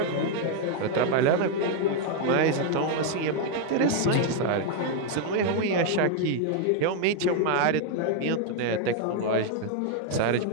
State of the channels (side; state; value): both; different; correlation 0.00